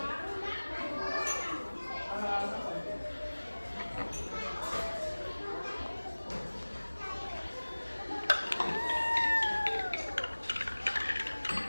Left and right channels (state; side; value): inverted; both; correlation -1.00